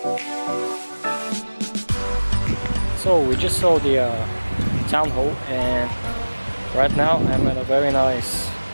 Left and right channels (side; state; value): both; inverted; correlation -1.00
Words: So we just saw the town hall, and right now I'm at a very nice